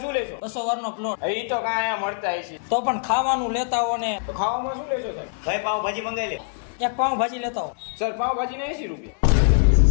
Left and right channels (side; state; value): right; silent; digital silence